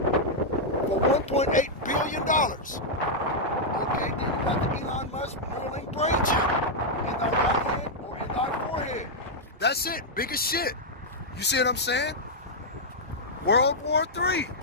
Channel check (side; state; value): both; normal; correlation -0.06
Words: $1.8 billion. Okay, then you got the Elon Musk Neuralink brain chip in thy right hand or in thy forehead. That's it, biggest shit. You see what I'm saying? World War III.